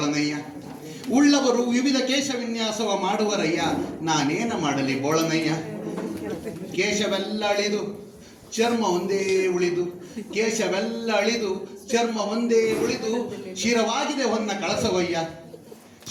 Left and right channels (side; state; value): both; identical; correlation 1.00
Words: ಉಳ್ಳವರು ವಿವಿಧ ಕೇಶ ವಿನ್ಯಾಸವ ಮಾಡುವರಯ್ಯ, ನಾನೇನ ಮಾಡಲಿ ಬೋಳನಯ್ಯ. ಕೇಶವೆಲ್ಲ ಅಳಿದು ಚರ್ಮ ಒಂದೇ ಉಳಿದು, ಕೇಶವೆಲ್ಲ ಅಳಿದು ಚರ್ಮ ಒಂದೇ ಉಳಿದು, ಶಿರವಾಗಿದೆ ಹೊನ್ನ ಕಳಸವಯ್ಯ,